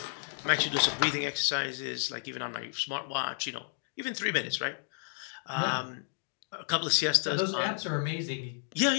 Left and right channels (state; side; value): silent; right; digital silence